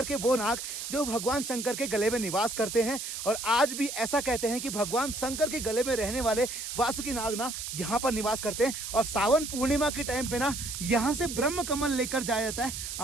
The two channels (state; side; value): noise; right; hiss, 6 dB below the sound